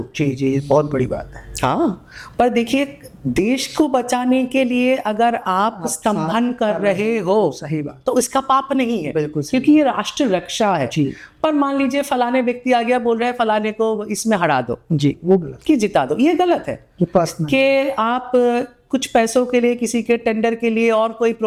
जी जी, बहुत बड़ी बात है। हाँ, पर देखिए, देश को बचाने के लिए अगर आप स्तंभन कर रहे हो, सही बात, तो इसका पाप नहीं है, बिल्कुल, क्योंकि ये राष्ट्र रक्षा है। जी। पर मान लीजिए फलाने व्यक्ति आ गया, बोल रहे हैं फलाने को इसमें हरा दो, जी, वो गलत, कि जिता दो, ये गलत है। कि आप कुछ पैसों के लिए, किसी के टेंडर के लिए और कोई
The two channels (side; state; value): both; identical; correlation 1.00